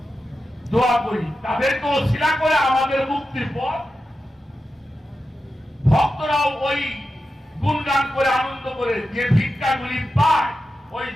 দোয়া করি, তাদেরকে ওসিলা করে আমাদের মুক্তির পথ। ভক্তরাও ওই গুণগান করে আনন্দ করে যে ভিক্ষাগুলি পায়, ওই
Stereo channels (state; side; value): normal; both; correlation 0.91